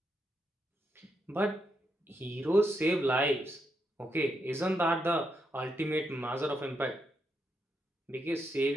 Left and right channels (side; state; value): both; normal; correlation 0.81